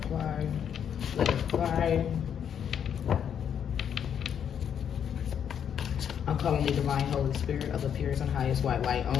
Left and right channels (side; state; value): right; quieter; 8.4 dB